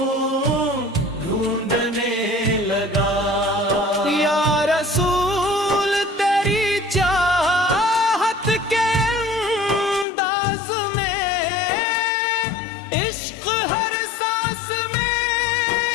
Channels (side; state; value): right; drops out; at 10.1 s